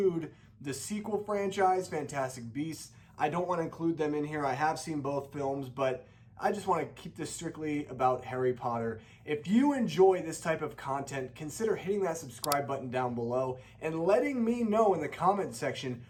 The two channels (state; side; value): identical; both; correlation 1.00